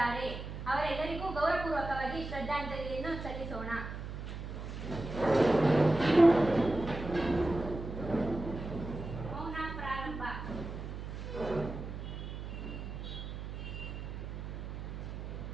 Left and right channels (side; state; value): right; noise; hum, 7 dB below the sound